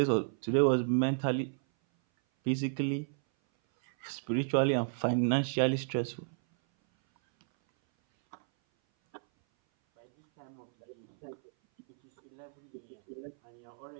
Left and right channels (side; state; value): left; silent; 56 dB below the other